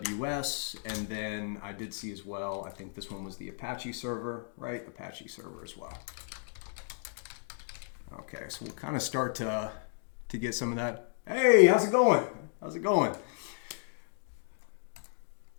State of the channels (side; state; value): right; silent; digital silence